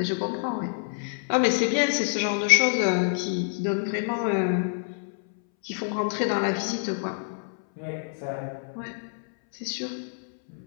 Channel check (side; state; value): right; silent; 60 dB below the other